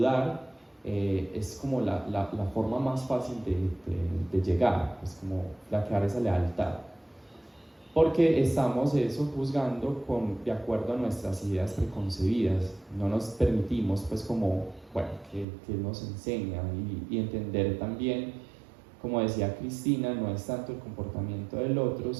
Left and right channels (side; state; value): left; drops out; at 15.5 s